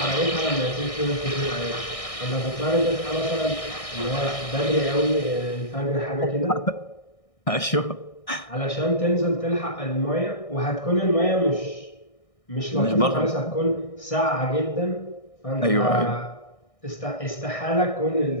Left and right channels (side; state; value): right; late; 1.6 ms